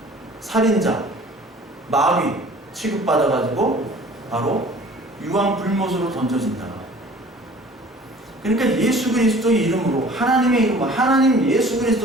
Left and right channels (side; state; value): both; normal; correlation 0.48